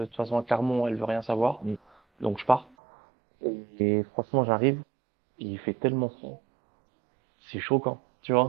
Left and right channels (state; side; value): drops out; left; at 2.7 s